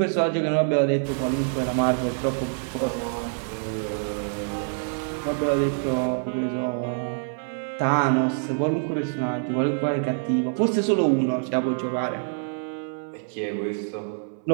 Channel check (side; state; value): left; silent; 58 dB below the other